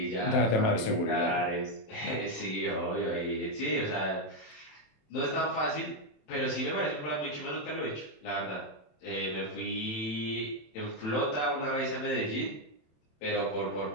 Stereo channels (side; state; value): right; late; 27 ms